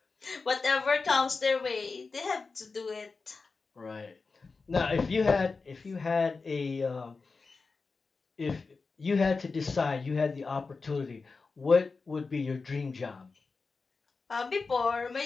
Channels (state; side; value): quieter; right; 4.3 dB